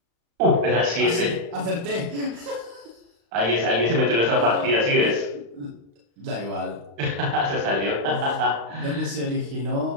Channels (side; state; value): left; late; 35 ms